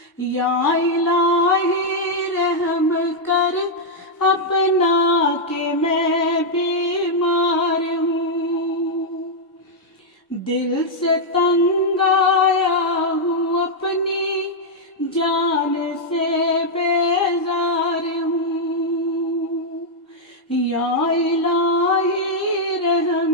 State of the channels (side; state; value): both; normal; correlation -0.04